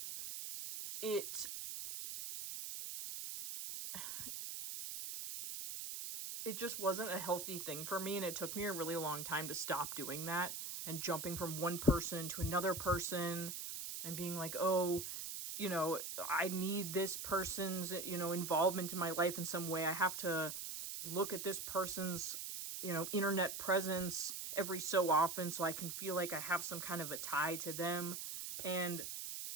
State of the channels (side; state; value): right; noise; hiss, 5 dB below the sound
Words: it just wasn't a healthy thing for me, and it took me a really long time to stop doing that, and jumping from one person to another person, and being like, oh, I need this person's, involvement in my life in some way. I have to look at this person's, internet presence every so often so I can feel like I have some kind of a tie to them. And